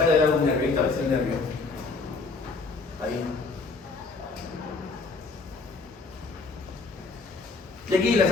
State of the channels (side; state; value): right; quieter; 4.0 dB